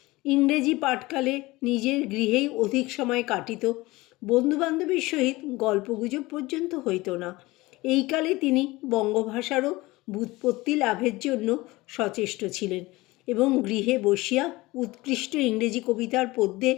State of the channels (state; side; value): quieter; right; 20.6 dB